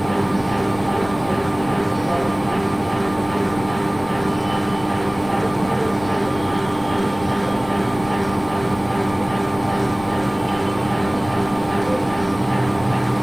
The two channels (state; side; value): noise; left; rumble, 16 dB below the sound